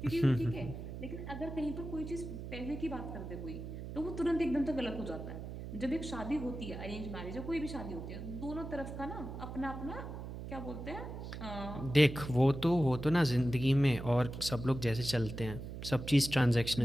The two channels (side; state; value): right; noise; hum, 8 dB below the sound